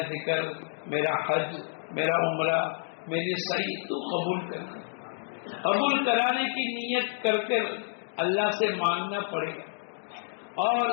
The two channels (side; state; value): right; silent; digital silence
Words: ذکر، میرا حج، میرا عمرہ، میری سعی تو قبول کر. قبول کرانے کی نیت کر کر اللہ سے مانگنا پڑے گا. اور